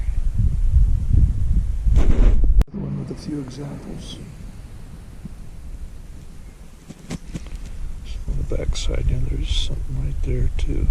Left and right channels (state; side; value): identical; both; correlation 1.00